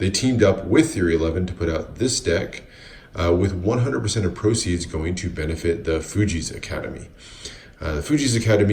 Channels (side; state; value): both; identical; correlation 1.00